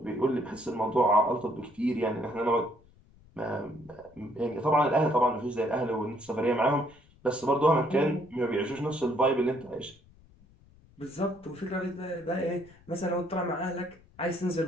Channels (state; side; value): noise; left; rumble, 27 dB below the sound